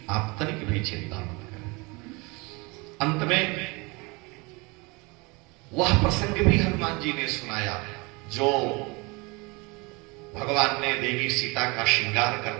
आप तनिक भी चिंता मत करें। अंत में वह प्रसंग भी हनुमान जी ने सुनाया जो भगवान ने देवी सीता का श्रृंगार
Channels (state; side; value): quieter; left; 26.7 dB